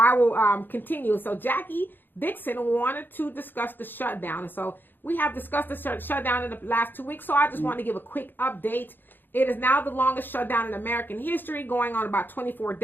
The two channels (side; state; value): right; late; 0.094 ms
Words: will continue. So, Jackie Dixon wanted to discuss the shutdown. And so, we have discussed the shutdown in the last 2 weeks, so I just want to give a quick update. It is now the longest shutdown in American history, going on about 24